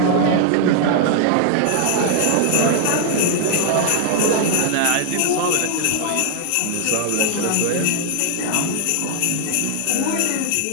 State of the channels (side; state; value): both; different; correlation 0.00